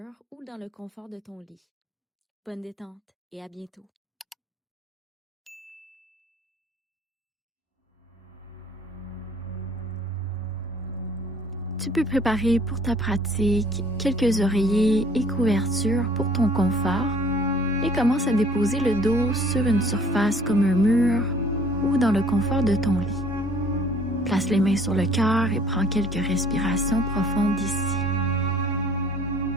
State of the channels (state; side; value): normal; both; correlation 0.55